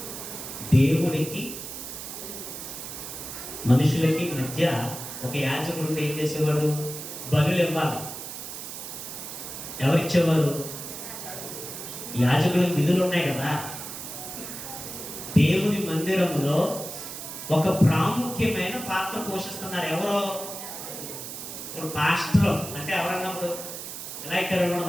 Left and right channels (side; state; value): right; noise; hiss, 9 dB below the sound